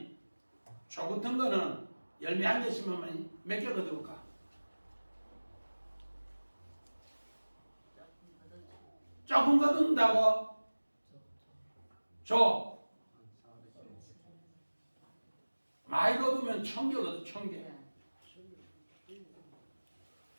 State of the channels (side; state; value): both; inverted; correlation -1.00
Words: 저 같은 거는 열매 한 개 심으면 몇 개 거둘까? 조금 거둔다고? 줘. 많이 거두면 1000개거든. 1000개.